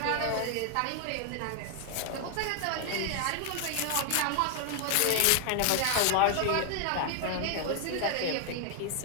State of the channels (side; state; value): both; different; correlation 0.00